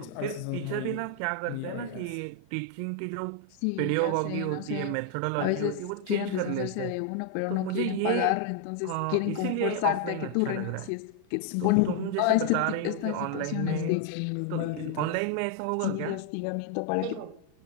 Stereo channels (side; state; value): both; different; correlation 0.00